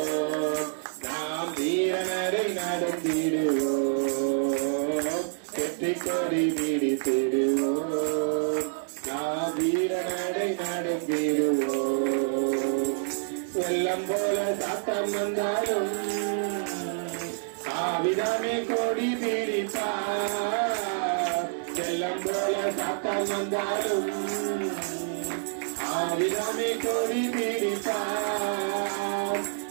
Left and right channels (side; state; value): left; silent; digital silence